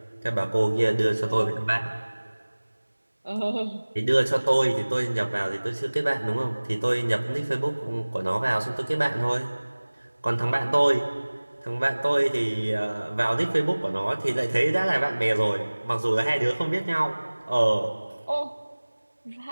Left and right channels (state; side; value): inverted; both; correlation -1.00